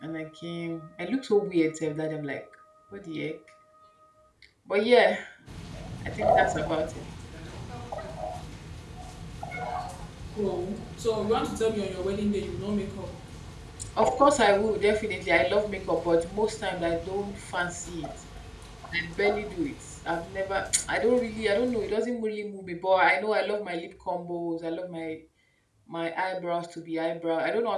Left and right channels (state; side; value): identical; both; correlation 1.00